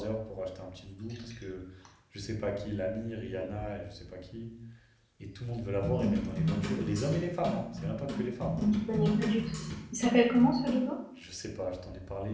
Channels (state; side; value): identical; both; correlation 1.00